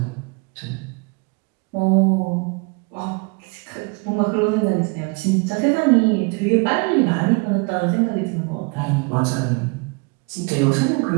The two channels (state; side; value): quieter; left; 31.8 dB